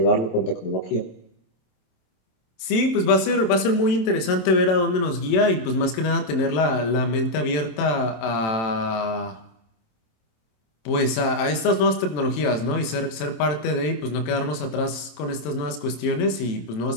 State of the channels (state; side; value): late; right; 27 ms